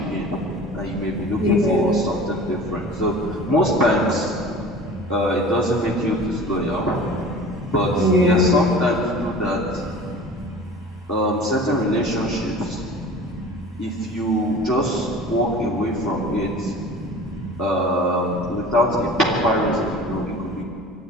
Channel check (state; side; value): normal; both; correlation 0.41